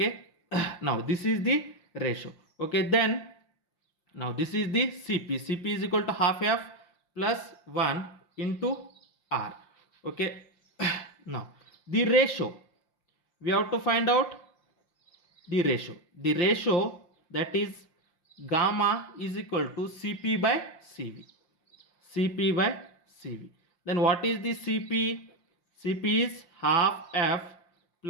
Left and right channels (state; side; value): late; right; 5.7 ms